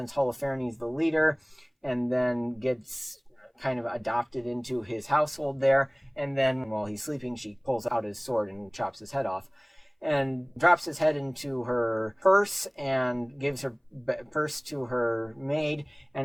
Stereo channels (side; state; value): both; identical; correlation 1.00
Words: Holofernes, the leader, and then gets kind of adopted into his household there. And then while he's sleeping, she pulls out his sword and chops his head off and drops his head into her purse and gives her purse to her maid,